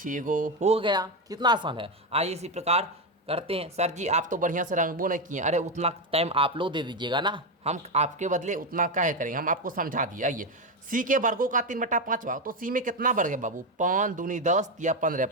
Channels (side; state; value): both; normal; correlation 0.10